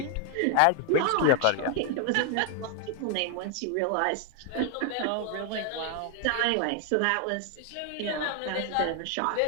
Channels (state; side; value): different; both; correlation 0.00